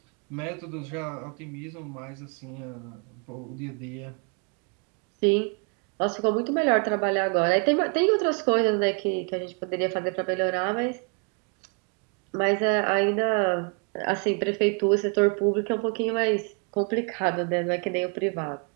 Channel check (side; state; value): left; quieter; 35.7 dB